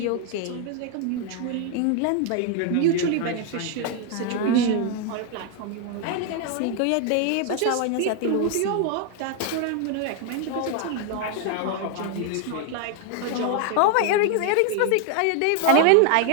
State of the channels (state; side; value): different; both; correlation 0.01